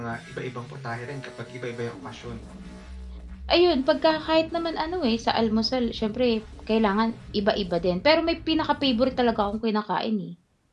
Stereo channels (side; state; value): both; identical; correlation 1.00